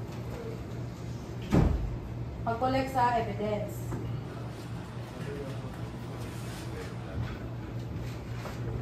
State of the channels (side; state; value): both; identical; correlation 1.00